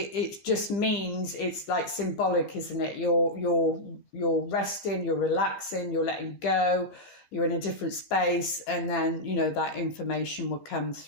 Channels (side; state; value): right; late; 15 ms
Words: just means, it's like symbolic, isn't it? You're resting, you're relaxing, you're letting go, you're in a different space, and then, you know, that information will come